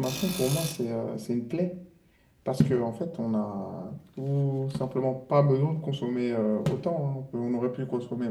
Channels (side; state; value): both; identical; correlation 1.00